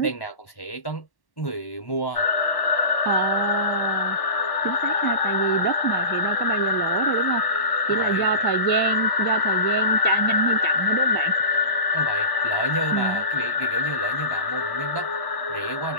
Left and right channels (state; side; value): late; right; 1.1 ms